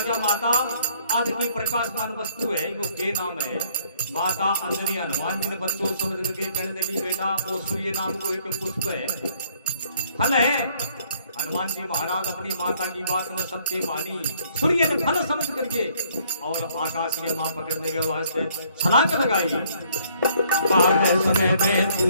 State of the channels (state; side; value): inverted; both; correlation -0.64